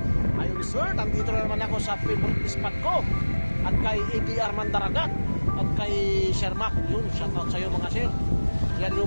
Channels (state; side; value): inverted; both; correlation -1.00